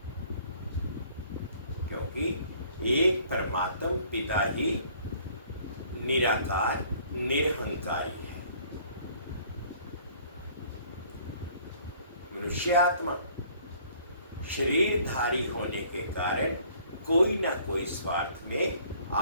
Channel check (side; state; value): both; inverted; correlation -0.57